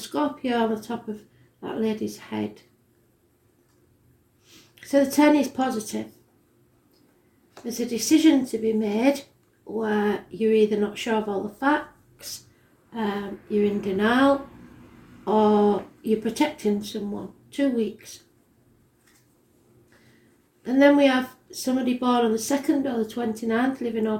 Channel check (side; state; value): both; identical; correlation 1.00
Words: on the top of that lady's head. So the 10 is positive. There's a decision to be made where you're either not sure of all the facts, you're in denial, or you're protecting someone. 2 weeks. And then we have somebody born on the 2nd or the 29th, living or